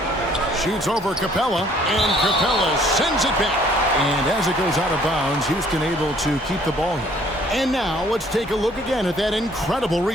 Shoots over Capella, and Capella sends it back. And as it goes out of bounds, Houston able to keep the ball here. And now let's take a look again at that incredible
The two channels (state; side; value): normal; both; correlation 0.59